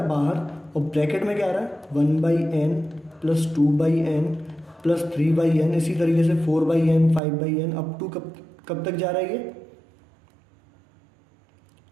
है बाहर और ब्रैकेट में क्या आ रहा है, 1/n plus 2/n plus 3/n, इसी तरीके से 4/n 5/n अप टू कब तक जा रहा है, ये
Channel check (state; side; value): drops out; left; at 7.2 s